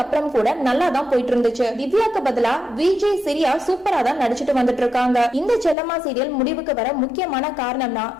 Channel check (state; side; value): drops out; right; at 5.8 s